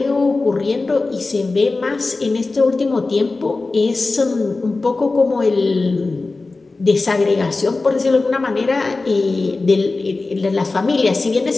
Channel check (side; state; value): right; quieter; 3.5 dB